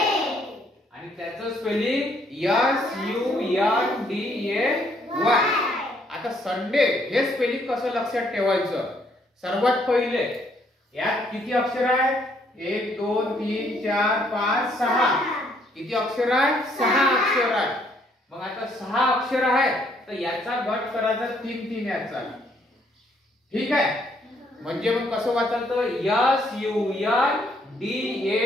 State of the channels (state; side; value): normal; both; correlation 0.68